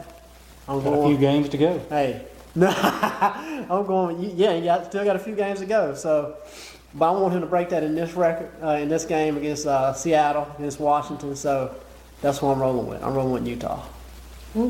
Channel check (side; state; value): both; identical; correlation 1.00